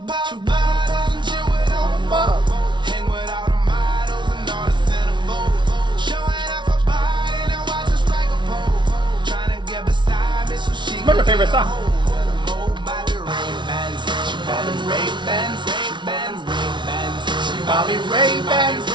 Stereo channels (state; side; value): late; left; 0.23 ms